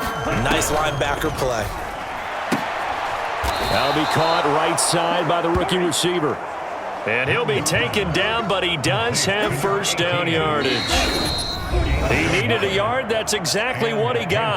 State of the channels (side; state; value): both; identical; correlation 1.00